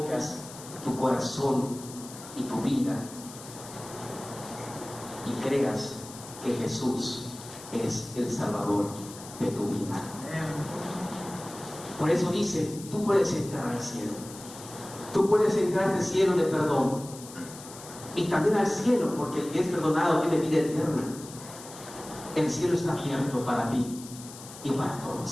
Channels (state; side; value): noise; left; hiss, 15 dB below the sound